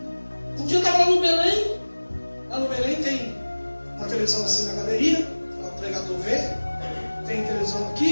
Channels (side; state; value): both; inverted; correlation -1.00